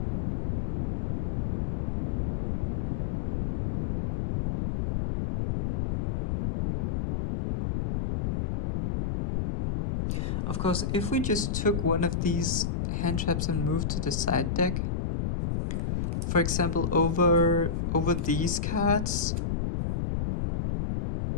Of course, if we just took one of these hand traps and moved to the side deck, for example, over these cards,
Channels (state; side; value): noise; left; rumble, 1 dB below the sound